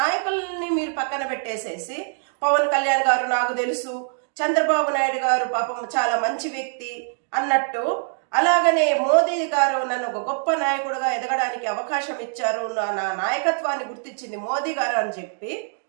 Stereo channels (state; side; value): silent; left; digital silence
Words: మీరు పక్కన పెట్టేసేసి పవన్ కళ్యాణ్ గారు నాకు తెలుసు, చంద్రబాబు నాయుడు గారు పాపం చాలా మంచి వ్యక్తి అన్నట్టు, అలాగనే మోదీ గారు నన్ను ఒక గొప్ప నాయకుడిగా ఎదగడానికి అవకాశం ఇచ్చారు, నా నాయకత్వాన్ని గుర్తించింది మోదీ గారు అని చెప్పి